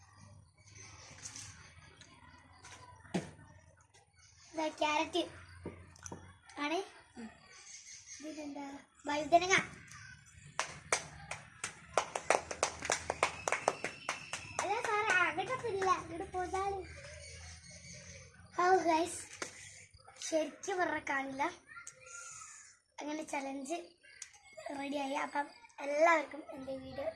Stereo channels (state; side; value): identical; both; correlation 1.00